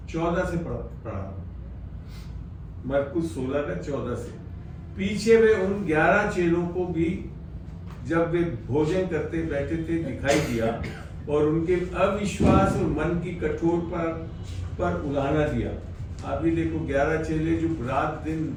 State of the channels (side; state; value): both; identical; correlation 1.00